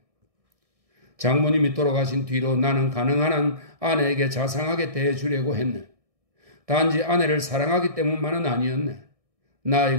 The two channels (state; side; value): late; left; 1.6 ms